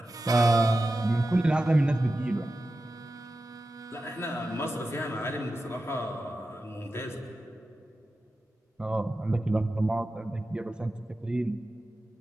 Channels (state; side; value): normal; both; correlation 0.92